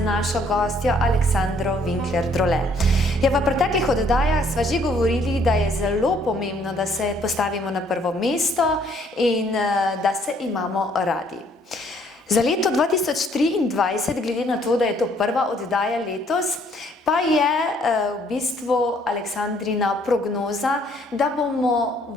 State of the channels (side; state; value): both; normal; correlation 0.64